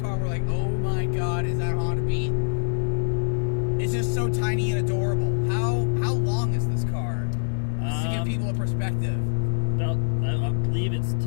We're like, "Oh my God, is that Honda Beat?" It's just so tiny and adorable. How long is this car? Just to give people a perspective. About, I believe it's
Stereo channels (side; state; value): right; silent; digital silence